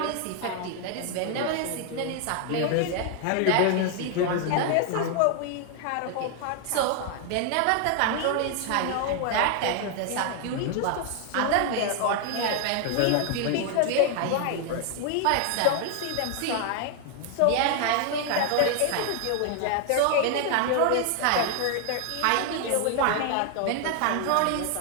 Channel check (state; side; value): different; both; correlation 0.00